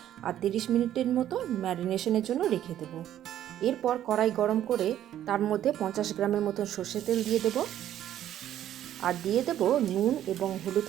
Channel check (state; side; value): quieter; left; 11.6 dB